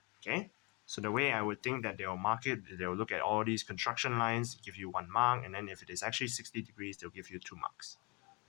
Okay, so the way I would think that they'll mark it, they'll look at all these construction lines, give you 1 mark, and then if it is actually 60 degrees, they'll give you 2 marks.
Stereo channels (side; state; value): right; quieter; 29.3 dB